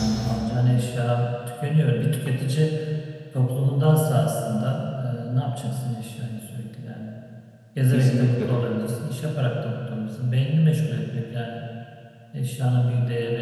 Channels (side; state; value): both; identical; correlation 1.00